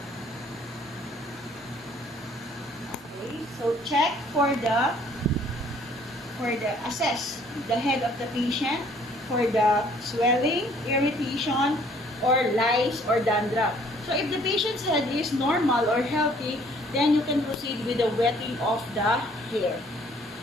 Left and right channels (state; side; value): normal; both; correlation 0.59